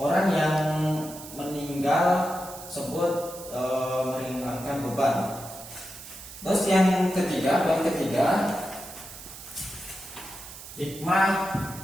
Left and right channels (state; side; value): noise; right; hiss, 14 dB below the sound